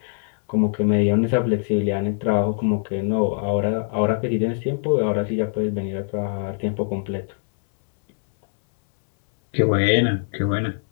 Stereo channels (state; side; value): silent; right; 64 dB below the other